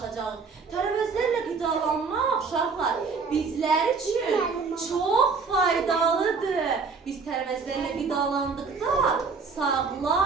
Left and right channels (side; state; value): left; quieter; 4.9 dB